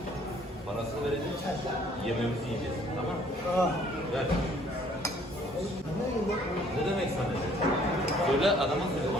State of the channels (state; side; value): normal; both; correlation 0.59